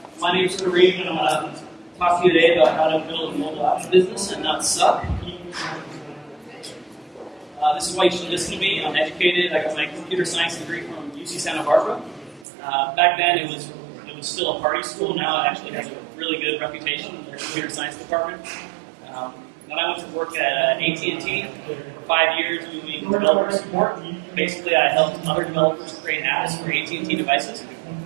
My name is Karim, and I'm going to talk to you today about how to build a mobile apps business and not suck. This is why you should listen to me. I'm educated. I got my computer science degree from UC Santa Barbara. Back then, it was still a party school. Now it actually has a really good reputation in their computer science department. Then I went to work at AT&T for 5 years doing developer support. Basically, I helped other developers create apps for AT&T devices.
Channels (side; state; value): left; drops out; at 12.5 s